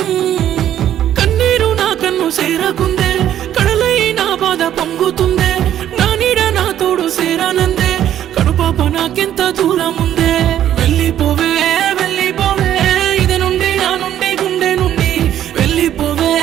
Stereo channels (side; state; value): left; quieter; 11.2 dB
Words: కన్నీరు నా కన్ను సేరకుందే కడలై నా బాధ పొంగుతుందే నా నీడ నా తోడు సేరానందే కడుపాప నాకెంత దూరం ఉందే వెళ్ళిపోవే వెళ్ళిపోవే ఇద నుండి నా నుండి గుండె నుండి వెళ్ళిపోవే